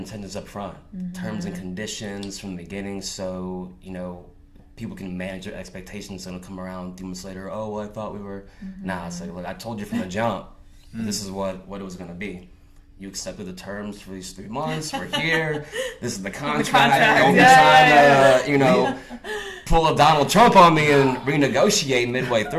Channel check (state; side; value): identical; both; correlation 1.00